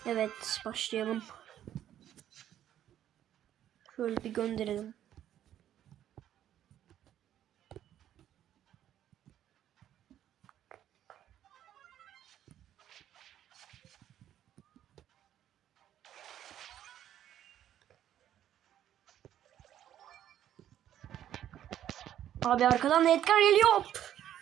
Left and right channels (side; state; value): left; quieter; 11.2 dB